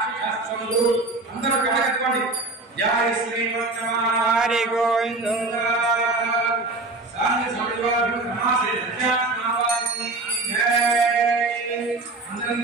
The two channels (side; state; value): left; quieter; 3.2 dB